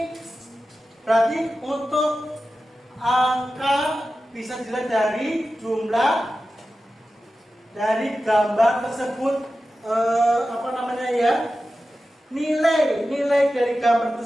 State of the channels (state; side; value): normal; both; correlation 0.93